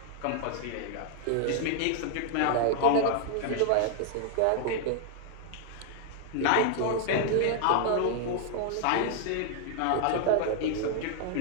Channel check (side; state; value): both; different; correlation 0.00